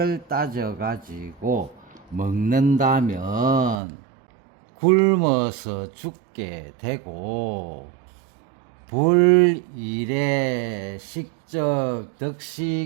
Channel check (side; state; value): left; drops out; at 3.8 s